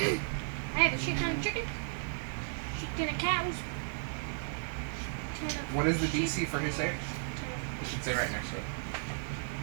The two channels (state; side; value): silent; left; 55 dB below the other